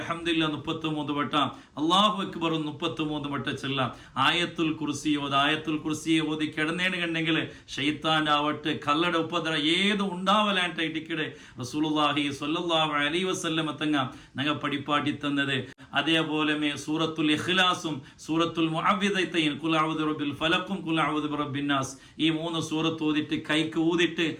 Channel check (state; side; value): identical; both; correlation 1.00